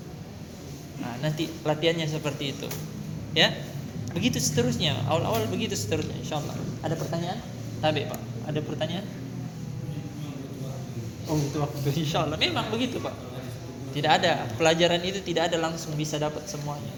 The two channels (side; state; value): both; identical; correlation 1.00